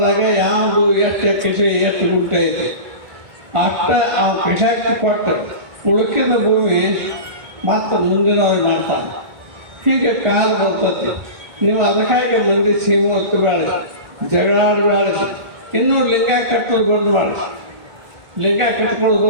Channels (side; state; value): left; late; 1.4 ms